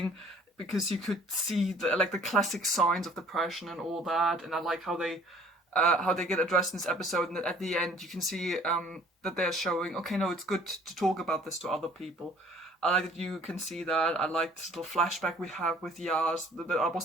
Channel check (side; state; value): both; normal; correlation 0.55